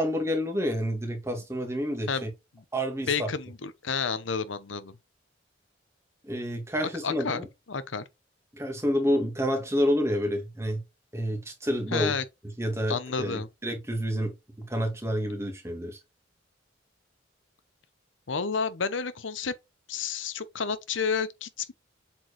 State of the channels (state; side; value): normal; both; correlation 0.52